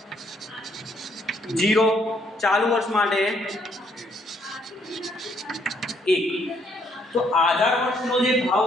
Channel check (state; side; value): normal; both; correlation 0.70